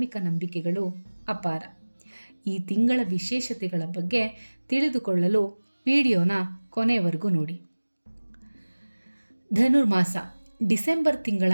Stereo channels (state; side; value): inverted; both; correlation -1.00